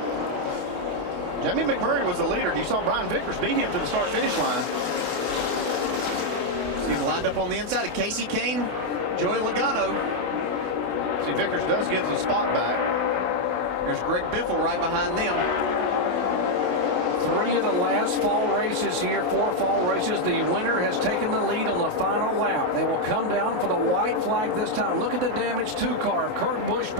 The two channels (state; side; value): late; left; 28 ms